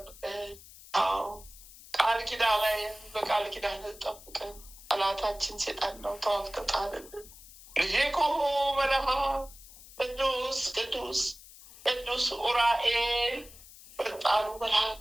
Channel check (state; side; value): noise; left; hiss, 19 dB below the sound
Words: አዎ ቃል ኪዳን ላይ በቃል ኪዳን ጠብቀን። ጠላታችን ሴጣን ነው። ተዋግተህ ጣልልን። ሊቁ መልአክ ቅዱስ ቅዱስ ቅዱስ ኡራኤል ፈጣኑ መልአክ